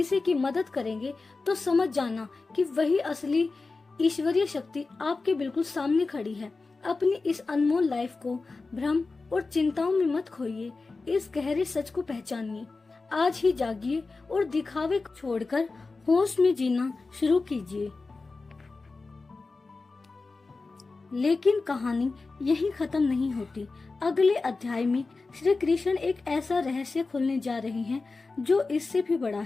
की मदद करेंगे, तो समझ जाना कि वही असली ईश्वरीय शक्ति आपके बिल्कुल सामने खड़ी है। अपनी इस अनमोल लाइफ को भ्रम और चिंताओं में मत खोइए, इस गहरे सच को पहचानिए। आज ही जागिए और दिखावे को छोड़कर होश में जीना शुरू कीजिए। लेकिन कहानी यहीं खत्म नहीं होती। अगले अध्याय में श्री कृष्ण एक ऐसा रहस्य खोलने जा रहे हैं जो इससे भी बड़ा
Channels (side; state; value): right; quieter; 3.8 dB